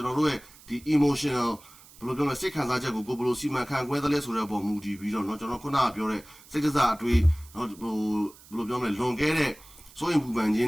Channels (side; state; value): right; noise; hiss, 23 dB below the sound